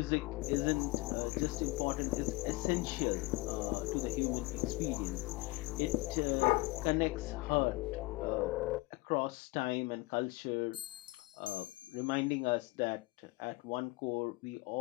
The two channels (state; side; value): quieter; right; 22.7 dB